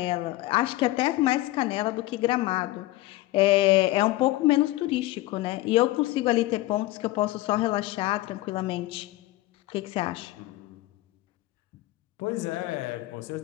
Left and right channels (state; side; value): quieter; right; 17.8 dB